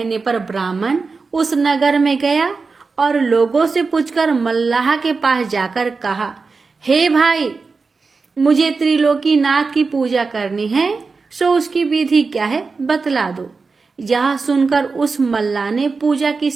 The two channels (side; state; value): left; quieter; 4.4 dB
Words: पर ब्राह्मण उस नगर में गया और लोगों से पूछकर मल्लाह के पास जाकर कहा, हे भाई मुझे त्रिलोकीनाथ की पूजा करनी है, सो उसकी विधि क्या है बतला दो। यह सुनकर उस मल्लाह ने पूजा की